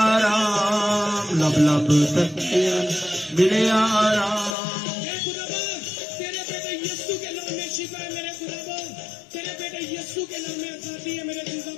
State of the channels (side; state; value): right; drops out; at 4.5 s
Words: लब लब तकिया मिले आराम तेरे बेटे यीशु के नाम में शिफा है मेरे खुदा तेरे बेटे यीशु के नाम में आजादी है मेरे खुदा